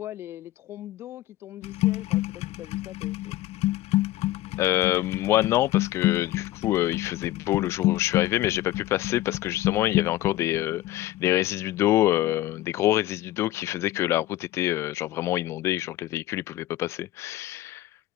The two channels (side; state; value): right; quieter; 15.5 dB